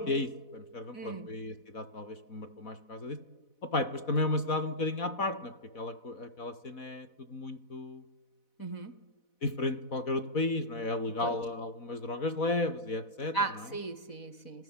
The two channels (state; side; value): late; right; 4.1 ms